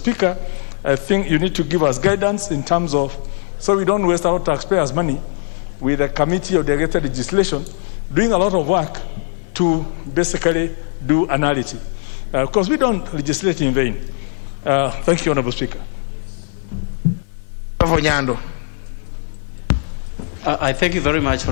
I think you need to give us guidance in terms of, so we don't waste our taxpayers' money with a committee of delegated legislation doing a lot of work to basically do analysis. Because we don't legislate in vain. Thank you, Honourable Speaker. I thank you very much,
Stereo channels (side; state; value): right; silent; 66 dB below the other